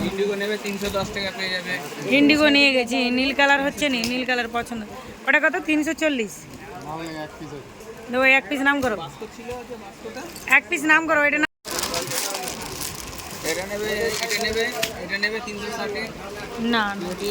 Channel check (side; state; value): both; identical; correlation 1.00